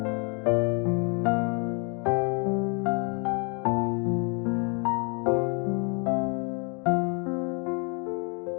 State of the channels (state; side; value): quieter; right; 34.9 dB